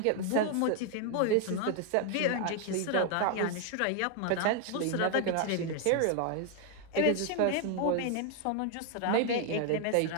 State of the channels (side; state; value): both; different; correlation 0.00